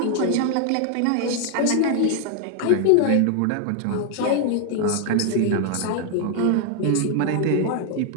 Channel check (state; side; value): different; both; correlation 0.01